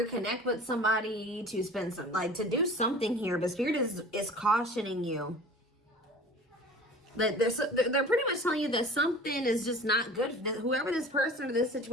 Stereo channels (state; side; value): normal; both; correlation 0.42